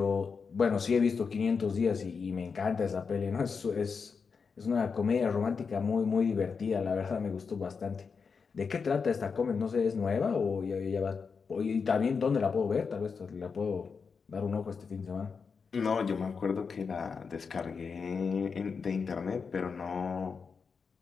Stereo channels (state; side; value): quieter; right; 5.5 dB